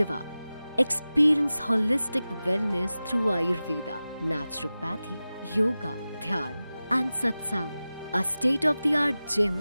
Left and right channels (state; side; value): inverted; both; correlation -0.96